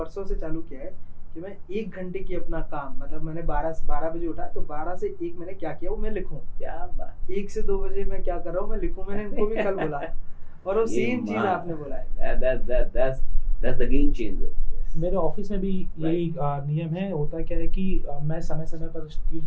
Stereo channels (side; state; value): both; identical; correlation 1.00